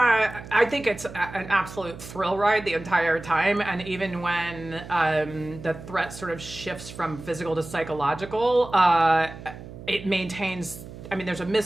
think it's an absolute thrill ride the entire time, and even when the threat sort of shifts from physical to psychological, it maintains. I mean, there's a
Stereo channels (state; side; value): noise; right; hum, 14 dB below the sound